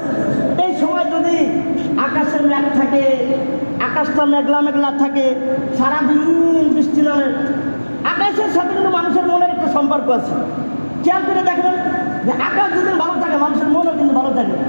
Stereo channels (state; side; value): inverted; both; correlation -1.00